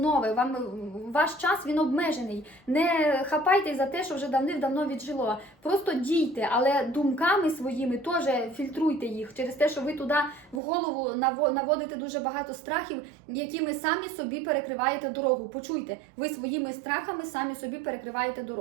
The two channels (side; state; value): left; drops out; at 10.6 s